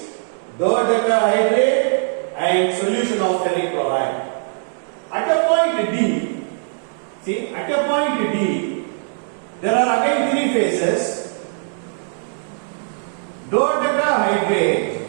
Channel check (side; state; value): left; silent; digital silence